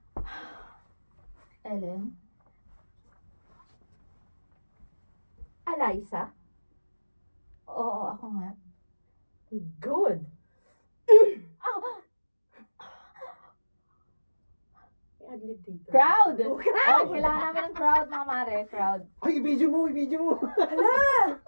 Ellen? Eliza? Oo, ako nga. Good. May adlib dito. Crowd! Oh, Oh, kailangan namin ng crowd, mga mare. Crowd. Ay, i-video mo, i-video mo. Hala!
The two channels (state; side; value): inverted; both; correlation -1.00